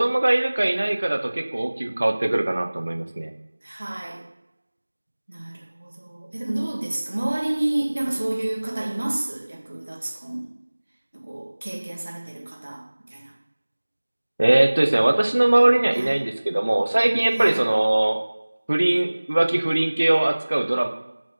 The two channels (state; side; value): inverted; both; correlation -1.00